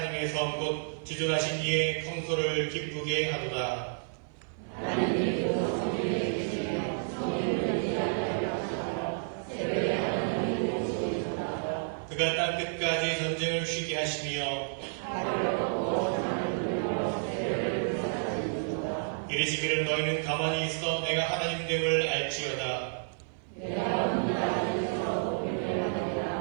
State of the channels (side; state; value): left; silent; 56 dB below the other